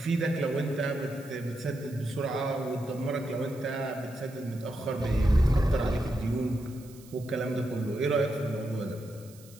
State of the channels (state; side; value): noise; right; hiss, 23 dB below the sound